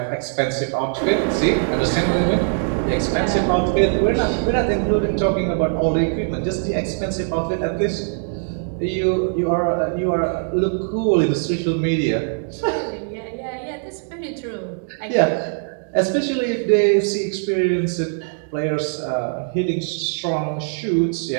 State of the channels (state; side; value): silent; left; 65 dB below the other